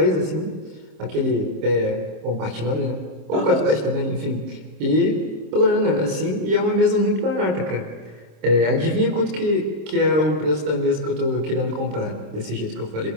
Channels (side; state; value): left; late; 26 ms